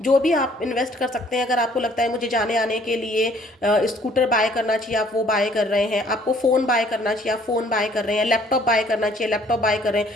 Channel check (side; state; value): both; normal; correlation 0.59